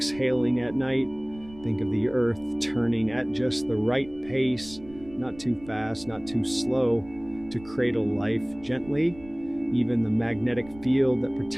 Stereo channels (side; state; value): right; noise; rumble, 20 dB below the sound